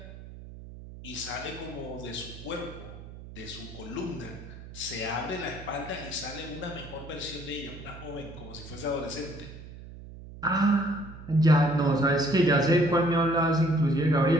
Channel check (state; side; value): noise; right; hum, 15 dB below the sound